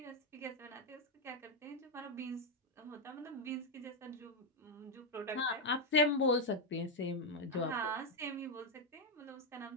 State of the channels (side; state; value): both; normal; correlation 0.03